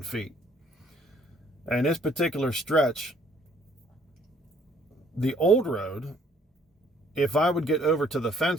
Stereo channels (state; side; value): normal; both; correlation 0.62